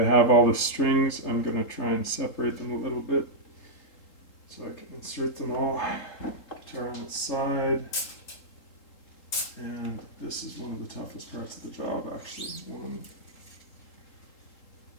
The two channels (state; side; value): late; right; 3.8 ms